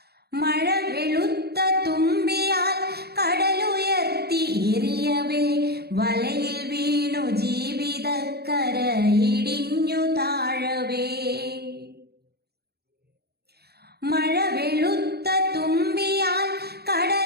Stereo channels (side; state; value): left; late; 0.47 ms